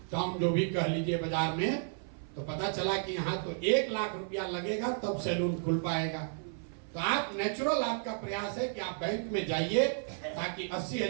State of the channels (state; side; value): silent; left; 56 dB below the other